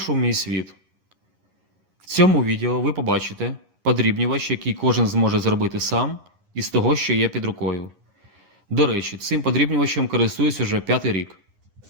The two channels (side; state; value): left; late; 9.9 ms